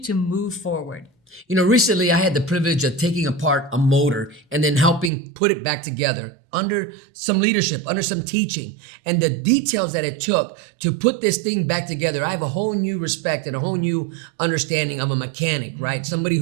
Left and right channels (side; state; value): left; drops out; at 5.1 s